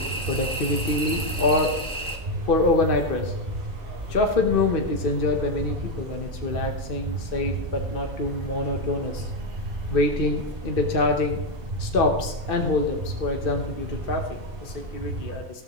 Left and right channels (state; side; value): normal; both; correlation 0.06